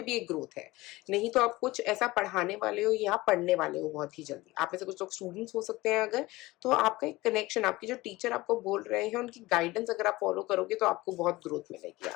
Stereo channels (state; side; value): quieter; right; 19.9 dB